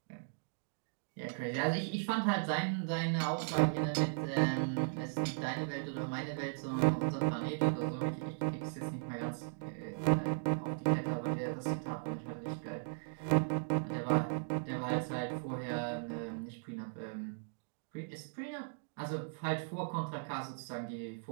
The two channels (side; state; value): left; silent; digital silence